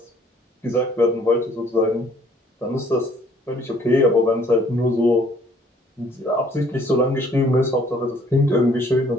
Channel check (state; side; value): normal; both; correlation 0.60